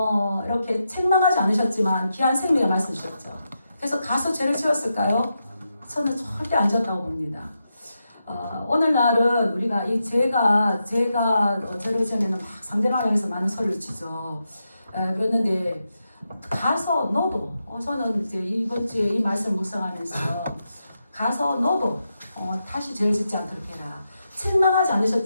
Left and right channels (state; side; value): inverted; both; correlation -0.86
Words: 이렇게 책망하지 않으셨지만 귀한 생명의 말씀 주셨죠. 그래서 가서 죄를 지었을까요? 저는 절대 안 지었다고 봅니다. 오늘날은 우리가 이 죄가 죄를 지으면 막 상대방을 향해서 많은 소리를 치죠. 그랬는데 가서 너도 저는 이제 이번 주에 이 말씀을 묵상하면서 가서 너도 다시 죄를 짓지 않도록 해라. 책망하지